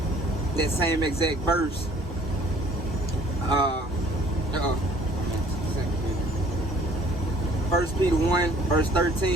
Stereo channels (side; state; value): both; normal; correlation 0.55